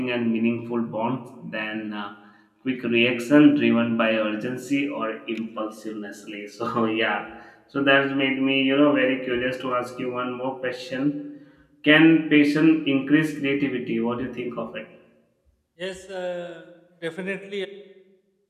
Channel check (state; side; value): identical; both; correlation 1.00